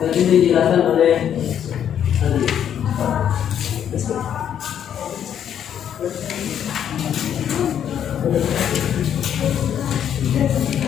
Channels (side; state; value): right; quieter; 9.4 dB